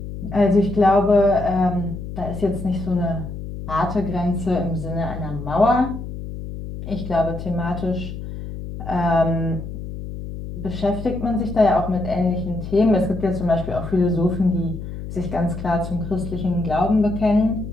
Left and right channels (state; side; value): noise; left; hum, 9 dB below the sound